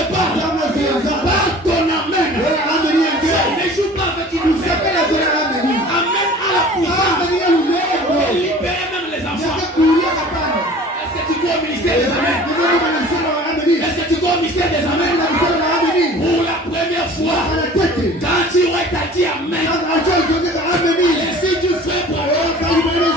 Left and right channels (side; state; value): both; normal; correlation 0.45